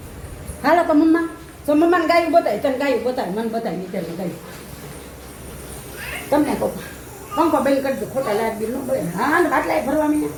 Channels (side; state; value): both; identical; correlation 1.00